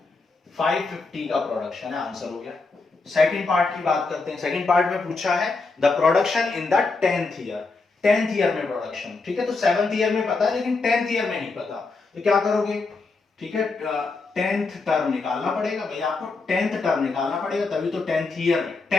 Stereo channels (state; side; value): quieter; right; 3.9 dB